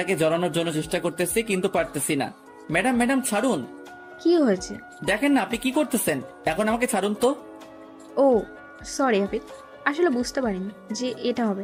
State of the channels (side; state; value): both; identical; correlation 1.00